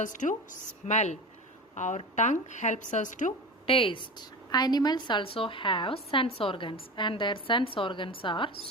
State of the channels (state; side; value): normal; both; correlation 0.30